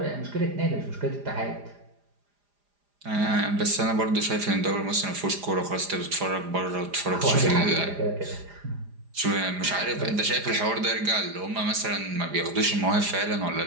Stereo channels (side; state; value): left; late; 4.9 ms